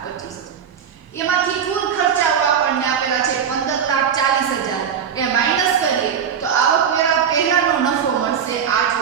એમાંથી કુલ ખર્ચાઓ આપણને આપેલા છે 15,40,000 એ માઈનસ કરીએ તો આવકવેરા પહેલાનો નફો મળશે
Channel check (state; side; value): quieter; left; 7.8 dB